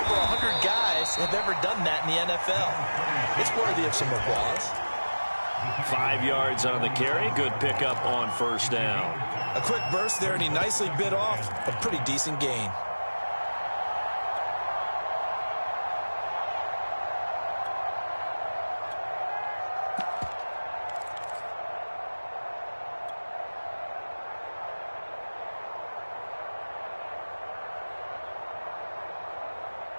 100 guys have ever done that in the NFL. It's worthy of some applause. 5 yards on the carry. Good pickup on 1st down. A quick burst there, and he nicely bit off a pretty decent gain.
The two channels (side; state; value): both; inverted; correlation -1.00